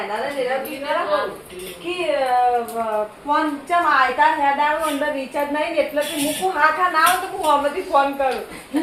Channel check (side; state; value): both; identical; correlation 1.00